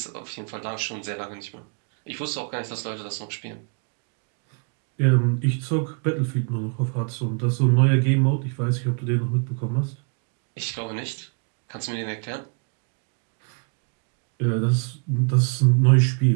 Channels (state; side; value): quieter; left; 39.8 dB